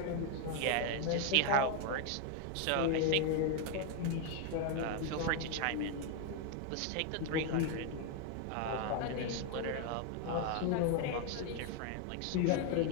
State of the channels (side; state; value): both; different; correlation 0.01